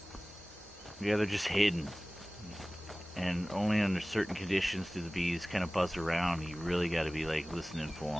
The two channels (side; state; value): both; normal; correlation 0.98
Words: Yeah, they're just hidden. And only under certain conditions do the bees kind of buzz around. You really got to be like listening for